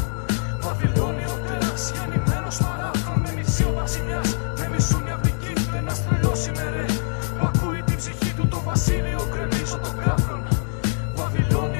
Βαβυλώνει ο τέρας, γεννημένος παράφρον. Με μισεί ο βασιλιάς, με μισούν οι αυλικοί. Ένας τρελός είμαι ρε, που ακούει την ψυχή του. Το βασίλειο γκρεμίζω των κάφρων.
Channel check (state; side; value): silent; right; 63 dB below the other